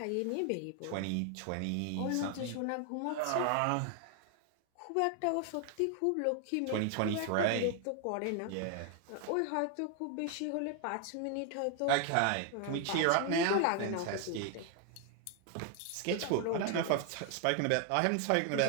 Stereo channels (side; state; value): both; different; correlation 0.00